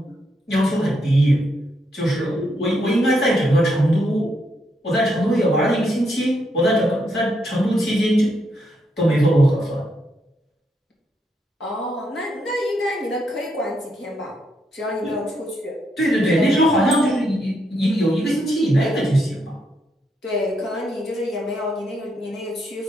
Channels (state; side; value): normal; both; correlation 0.78